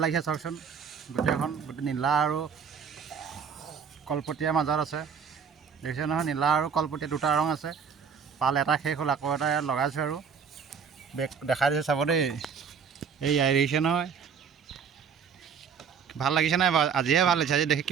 লাগিছে চাওকচোন, গোটেই নীলা আৰু কলপতীয়াৰ মাজত আছে। দেখিছে নহয়, নীলা আৰু কলপতীয়া দুটা ৰং আছে। পাল এটা শেষ হ'ল, আকৌ এটা লগাইছোঁ আৰু বেগ দেখাই দিছোঁ চাব দেই। এই দেখিছে নহয়, ভাল লাগিছে নাই বাৰু? আজিহে ভাল লাগিছে। আজি দেখি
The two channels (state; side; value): quieter; left; 6.7 dB